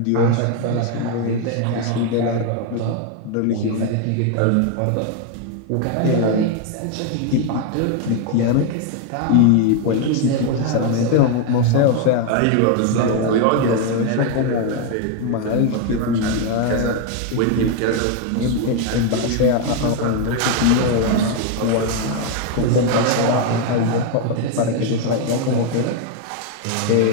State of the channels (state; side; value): different; both; correlation 0.01